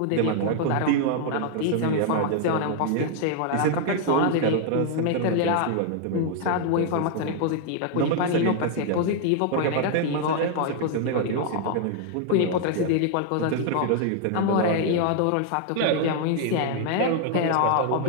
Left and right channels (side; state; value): both; different; correlation 0.00